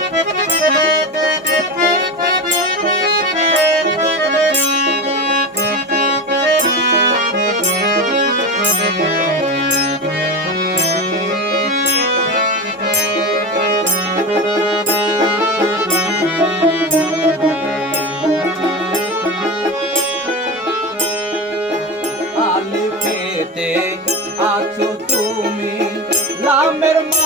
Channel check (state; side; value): normal; both; correlation 0.24